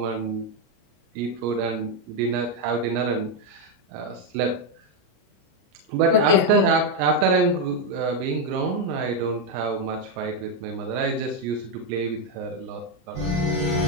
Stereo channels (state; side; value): late; left; 33 ms